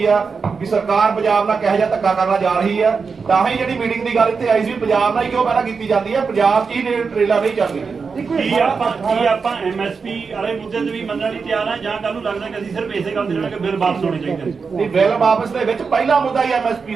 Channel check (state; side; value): quieter; left; 5.2 dB